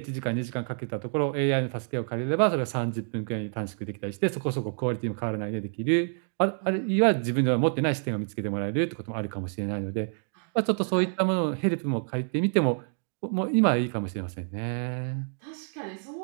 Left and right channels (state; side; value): silent; left; 59 dB below the other